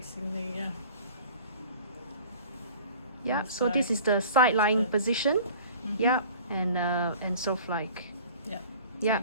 the yeah, so this is the side lying position. Yeah, and sort of like, so yeah,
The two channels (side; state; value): both; inverted; correlation -0.46